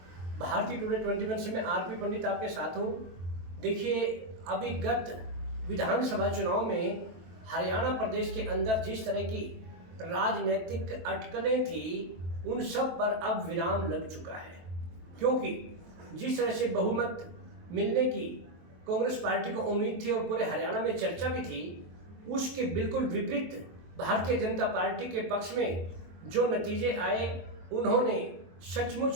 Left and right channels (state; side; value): late; left; 23 ms